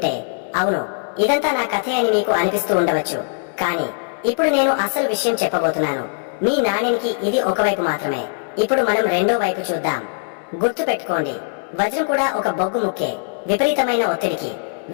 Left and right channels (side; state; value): right; silent; digital silence